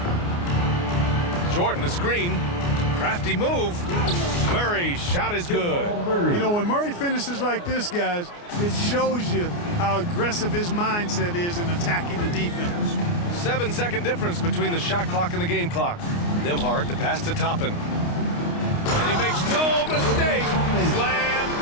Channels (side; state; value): right; late; 29 ms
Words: Jordan, the screen. Crafty move. Murray, shot is good. You know, when Murray finishes like this, guys, it shows you how aggressive his mindset is in attacking the defense. 7-second difference between the shot clock and the game clock. Nembhard, the pass to Toppin. And he makes no mistake. Slam